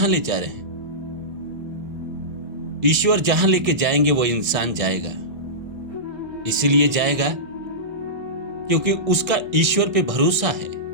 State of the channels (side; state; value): left; late; 1.6 ms